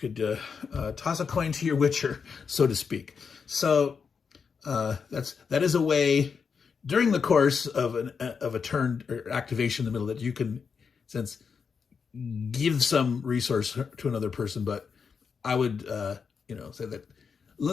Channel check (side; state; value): right; quieter; 5.9 dB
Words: toss a coin to your witcher, so to speak. So that is a way during the course of a turn or activation in the middle that you can, give some resource to another person. But I would, say that